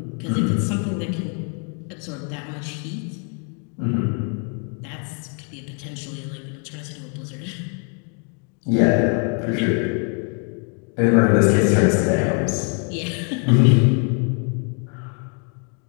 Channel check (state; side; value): quieter; right; 39.8 dB